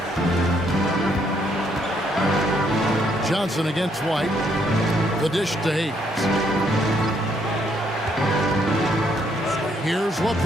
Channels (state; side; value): normal; both; correlation 0.71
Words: Johnson against White. The dish to Hayes. Here's